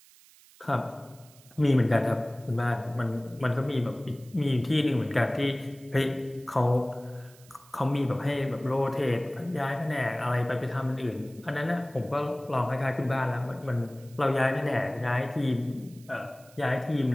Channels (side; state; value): right; noise; hiss, 25 dB below the sound